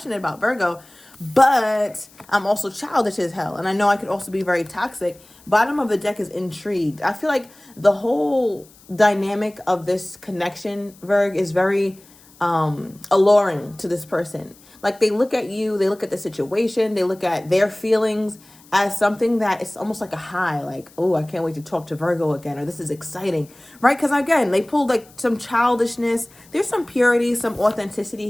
about Virgo, but I'm also childish as hell. And I know I could also be very toxic. Bottom of the deck is intrigued. I feel like the whole dynamic of this connection, Virg, is very alluring to this person. Like, they look at you, they look at the situation, they look at their feelings as something that is almost like a high, like, oh, I can't wait to talk to Virgo again, or this is exciting, right? Because again, they pulled like some childishness. There's some purity, some authenticity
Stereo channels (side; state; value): left; noise; hiss, 26 dB below the sound